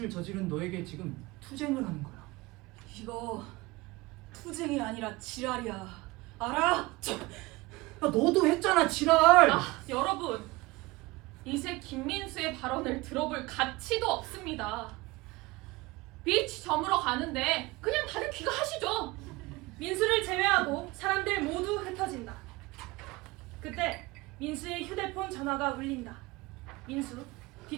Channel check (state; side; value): quieter; left; 21.7 dB